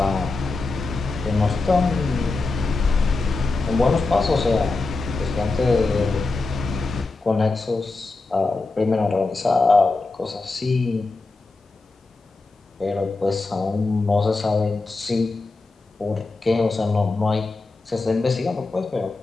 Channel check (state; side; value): quieter; right; 3.6 dB